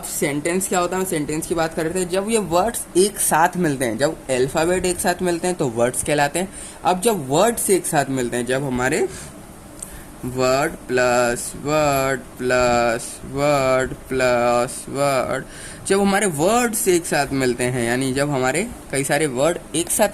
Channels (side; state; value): both; identical; correlation 1.00